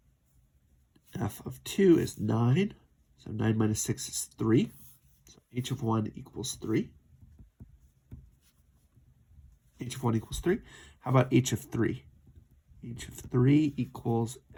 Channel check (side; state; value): both; identical; correlation 1.00